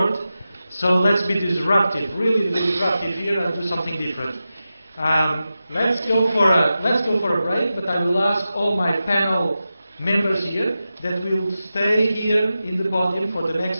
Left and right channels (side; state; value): both; inverted; correlation -0.92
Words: So let's be disruptive, really disruptive here, and do something different. Let's go for a break, but I will ask all my panel members here that will stay here in the podium for the